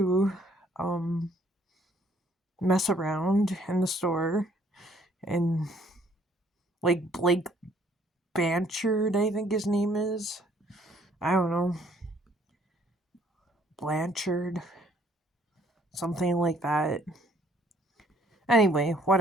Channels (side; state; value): both; normal; correlation 0.62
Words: mess around in the store, and like Blake Blanchard, I think his name is. I don't know. Blanchard. Something like that. Anyway,